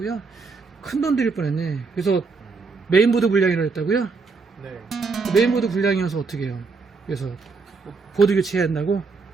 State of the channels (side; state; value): left; quieter; 4.5 dB